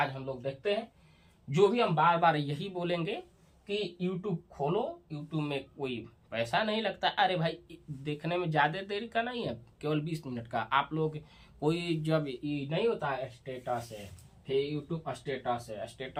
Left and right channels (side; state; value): both; identical; correlation 1.00